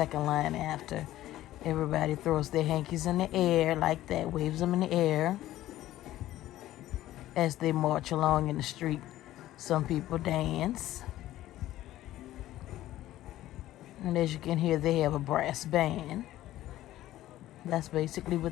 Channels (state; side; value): quieter; right; 14.5 dB